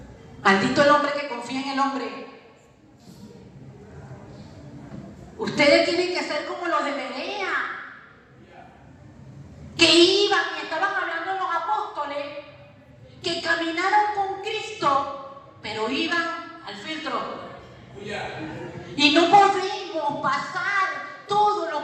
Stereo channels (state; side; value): identical; both; correlation 1.00